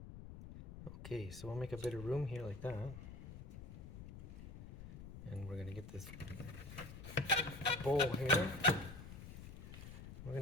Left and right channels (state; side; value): noise; left; rumble, 11 dB below the sound